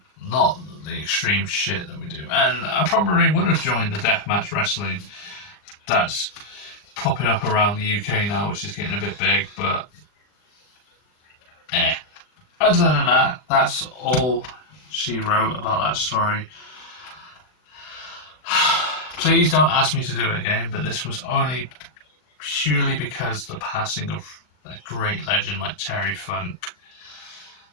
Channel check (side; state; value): right; late; 39 ms